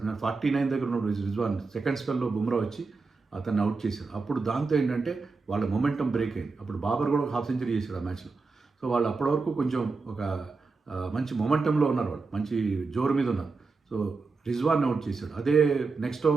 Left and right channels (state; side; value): quieter; left; 4.2 dB